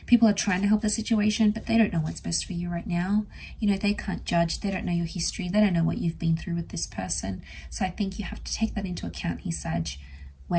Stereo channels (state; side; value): identical; both; correlation 1.00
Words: People are trying to help the situation, but they don't know what's best for you right now. You know, they can't judge. They don't know your history. They don't know what you've been through with this person. So I think you have to take that into account here, Sag,